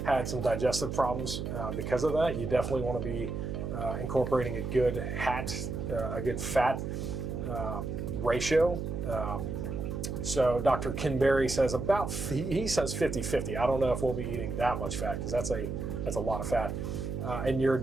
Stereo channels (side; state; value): right; noise; hum, 4 dB below the sound